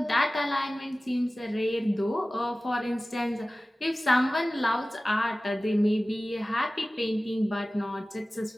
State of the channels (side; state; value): both; normal; correlation 0.97